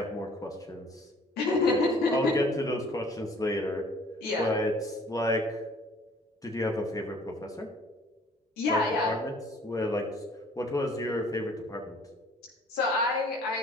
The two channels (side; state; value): both; normal; correlation 0.54